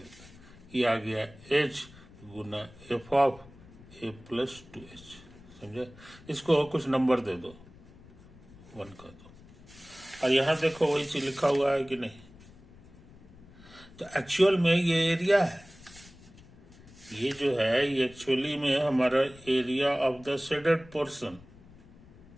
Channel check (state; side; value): noise; left; rumble, 22 dB below the sound